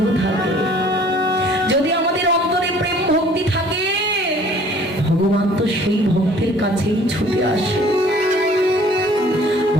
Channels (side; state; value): both; normal; correlation 0.53